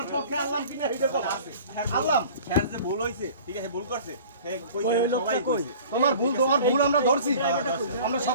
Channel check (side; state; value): both; inverted; correlation -0.45